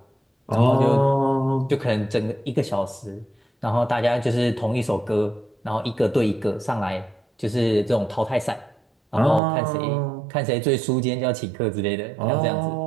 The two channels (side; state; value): left; drops out; at 9.4 s